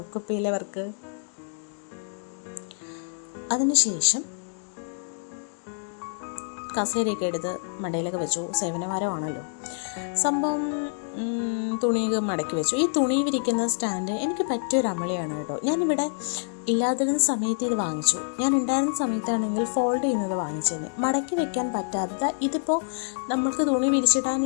കുപ്പിയിലെ വർക്ക്. അതിനുശേഷം കസേരയൊക്കെ എടുത്ത് മടയിലൊക്കെ വെച്ചു. സേവനവാരമാണല്ലോ സംഭവം. തുണിയൊക്കെ മടക്കി വെച്ചു. ഈ തുണി വിരിക്കുന്ന സ്റ്റാൻഡ് എനിക്ക് പറ്റിയൊരു അമളിയാണ് കേട്ടോ. ഞാനിവിടെ ഇല്ലാതിരുന്ന സമയത്ത് ഇത് വാങ്ങിച്ചു. ഞാൻ ഉണ്ടായിരുന്ന സമയത്താണെങ്കിൽ ഫോൾഡ് ചെയ്യുന്നത് വാങ്ങിച്ചതിന്. മടക്കി വെക്കാൻ പറ്റാത്ത, ഇതിപ്പോൾ നമ്മൾക്ക് തുണി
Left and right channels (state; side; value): silent; right; digital silence